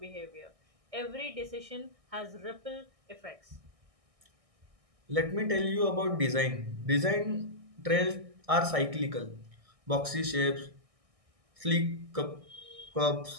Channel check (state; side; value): late; left; 1.6 ms